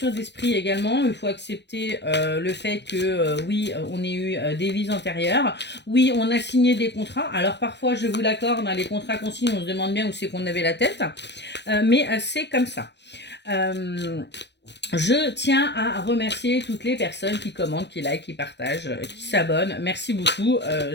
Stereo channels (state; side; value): late; right; 0.50 ms